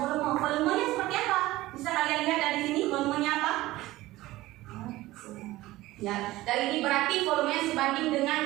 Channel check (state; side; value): quieter; left; 17.6 dB